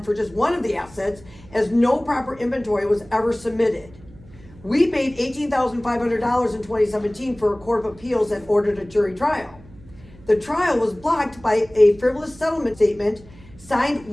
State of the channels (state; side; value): noise; right; hum, 23 dB below the sound